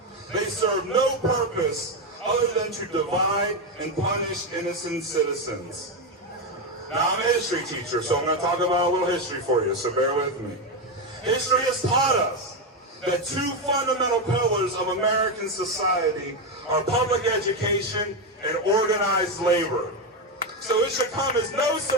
They serve no purpose other than to divide and punish innocent citizens. Now, I'm a history teacher, so I'm going to talk about a little history for you, so bear with me. History has taught us that two fundamental pillars of American society are public education and organized labor. So it should come as no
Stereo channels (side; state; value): both; normal; correlation 0.09